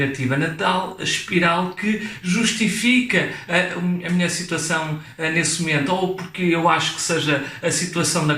na tal espiral que justifica a minha situação nesse momento, ou porque eu acho que seja a situação da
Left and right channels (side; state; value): both; identical; correlation 1.00